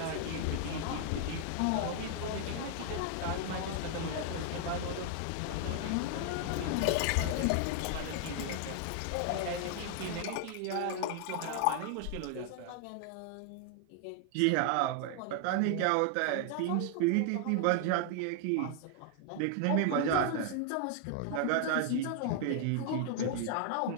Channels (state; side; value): different; both; correlation 0.00